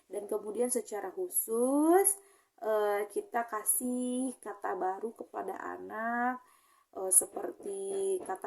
dan kemudian secara khusus kita kasih kata baru kepada anak, seperti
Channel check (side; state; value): both; identical; correlation 1.00